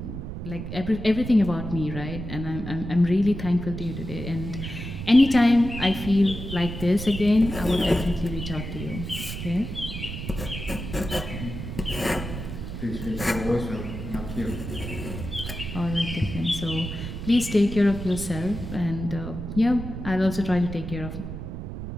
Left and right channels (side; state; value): right; noise; rumble, 7 dB below the sound